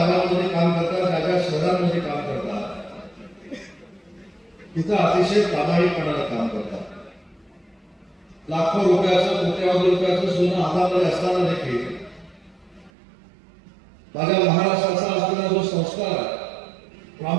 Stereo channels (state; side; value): drops out; left; at 12.9 s